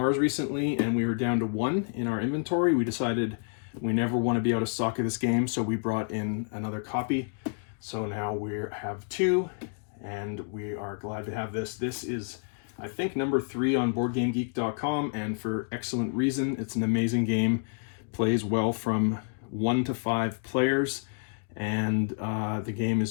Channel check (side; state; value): right; silent; 56 dB below the other